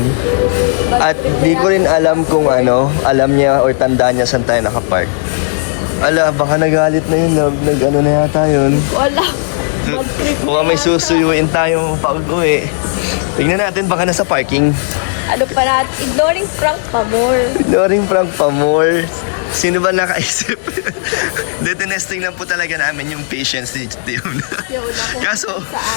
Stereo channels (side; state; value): right; silent; digital silence